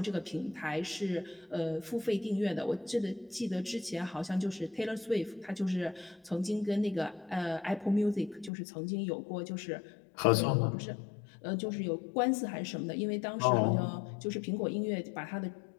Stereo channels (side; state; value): right; drops out; at 8.5 s